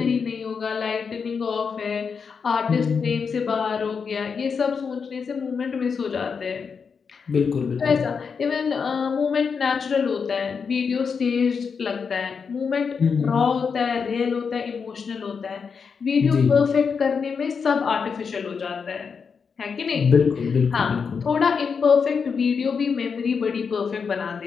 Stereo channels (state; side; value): quieter; right; 5.9 dB